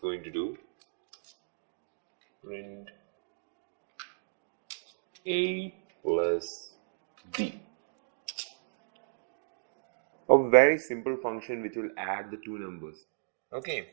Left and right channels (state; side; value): silent; left; digital silence